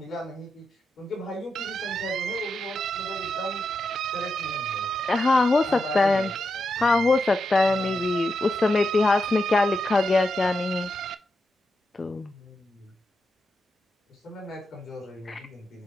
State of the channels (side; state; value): both; normal; correlation 0.86